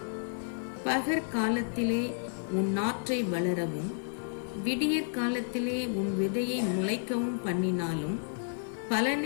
பகற்காலத்திலே உன் நாற்றை வளரவும் விடியற் காலத்திலே உன் விதையை முளைக்கவும் பண்ணினாலும்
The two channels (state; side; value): silent; right; digital silence